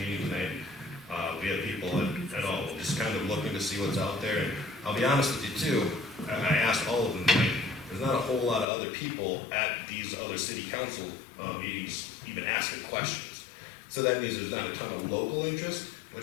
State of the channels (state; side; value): drops out; right; at 8.7 s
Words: tonight. We have people at all, just kind of looking to see what's out there. And I'll be honest with you too, I asked all of them tonight, there's not a whole lot of other people at these other city council meetings even asking questions. So that means there's not a ton of local interest,